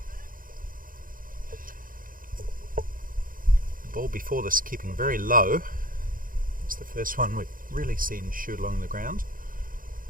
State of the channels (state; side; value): late; left; 0.40 ms